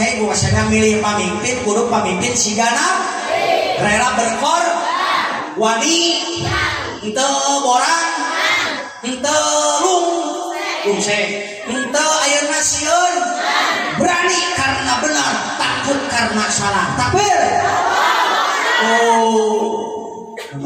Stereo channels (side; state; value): both; identical; correlation 1.00